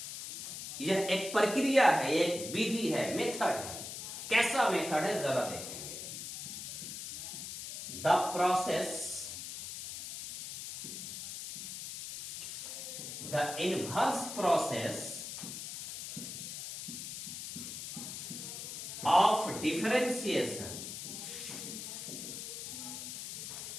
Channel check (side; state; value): left; noise; hiss, 7 dB below the sound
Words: यह एक प्रक्रिया है, एक विधि है, मेथड है। कैसा मेथड है जरा देखेंगे। The process, the inverse process of differentiation